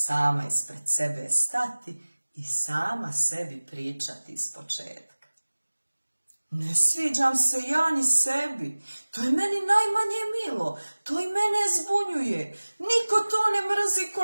ispred sebe stati i sama sebi pričati iz početka. Ne sviđam se ja ni sebi, to je meni najmanje milo, to i mene zbunjuje. Niko to ne mrzi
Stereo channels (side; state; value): both; inverted; correlation -1.00